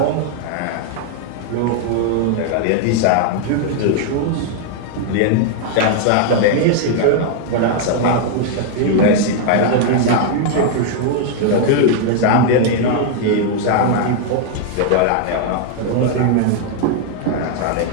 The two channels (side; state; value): both; different; correlation 0.00